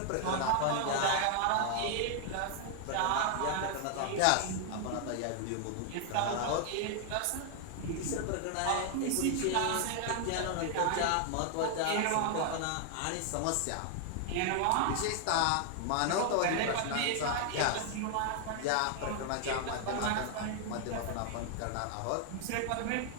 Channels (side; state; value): both; different; correlation 0.00